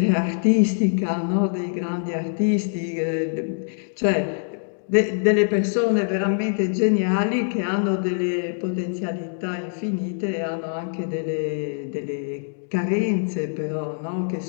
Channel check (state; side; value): silent; right; digital silence